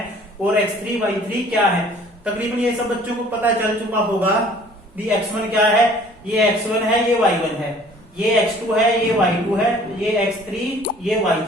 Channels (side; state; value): both; normal; correlation 0.53